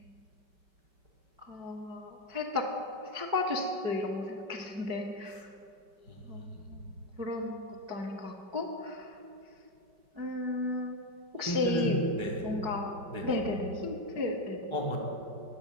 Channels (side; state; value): left; late; 5.2 ms